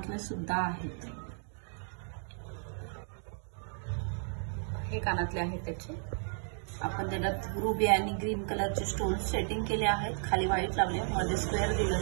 सुद्धा आहेत. हे कानातले आहेत त्याचे. आपण त्याच्यात रुबी आणि ग्रीन कलरचे स्टोन सेटिंग केले आहेत. खाली व्हाईट लावले, मध्ये स्क्वेअर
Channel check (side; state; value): left; silent; 55 dB below the other